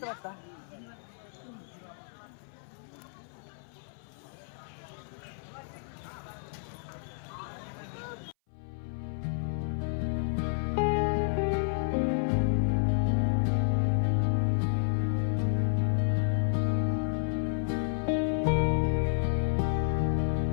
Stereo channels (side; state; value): right; silent; 57 dB below the other